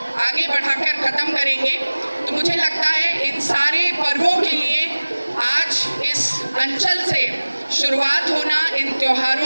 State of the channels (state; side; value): inverted; both; correlation -1.00